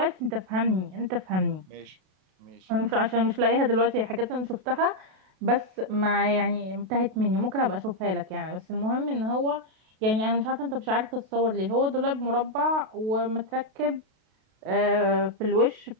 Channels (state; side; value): late; left; 32 ms